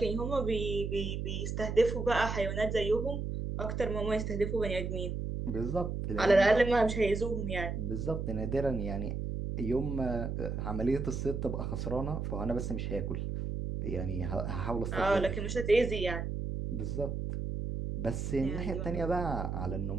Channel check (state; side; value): noise; right; hum, 3 dB below the sound